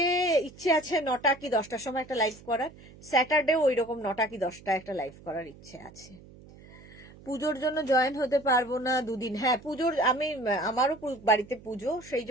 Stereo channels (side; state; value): right; noise; hum, 21 dB below the sound